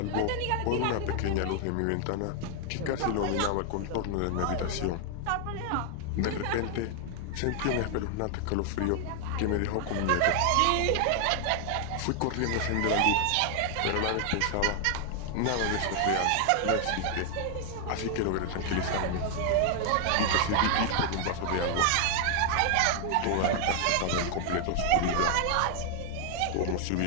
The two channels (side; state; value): both; different; correlation 0.00